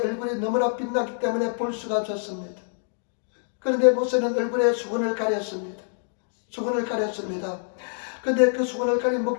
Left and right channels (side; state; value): right; silent; digital silence